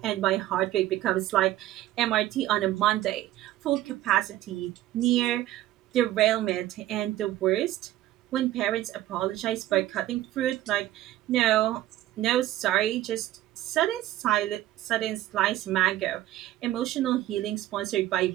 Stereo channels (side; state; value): left; quieter; 14.5 dB